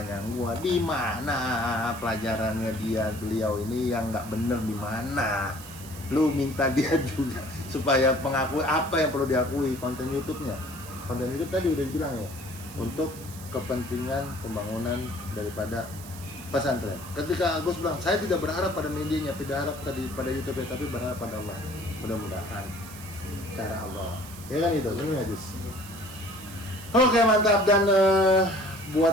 di mana pelajarannya beliau ini yang nggak bener di mana? Lu minta dia juga supaya mengakui apa yang perlu diakui konten YouTube-nya. Konten YouTube tadi udah dibilang ya, untuk kepentingan pembangunan daripada pesantren. Ketika Gus bilang, saya tidak berharap pada medianya, tidak harap tadi pada YouTube-nya, tapi berharap pada Allah. Mudah-mudahan cara Allah. Ya kan itu, ini ya Gus. Oke, mantap. Dan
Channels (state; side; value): noise; right; hiss, 16 dB below the sound